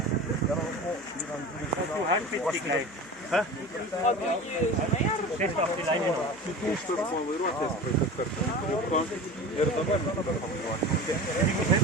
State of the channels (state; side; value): noise; left; hum, 30 dB below the sound